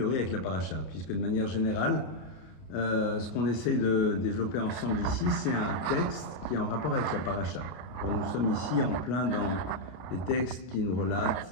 avec la paracha, puisque de manière générale, ce qu'on essaye de développer ensemble ici, c'est un texte qui est en rapport avec la paracha. Alors, nous sommes ici en plein dans les textes qui nous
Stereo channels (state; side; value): late; right; 32 ms